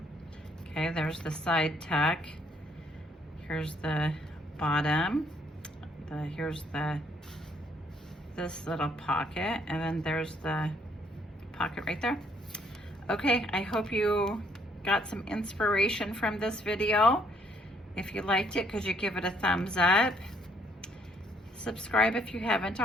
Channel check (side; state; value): both; normal; correlation 0.67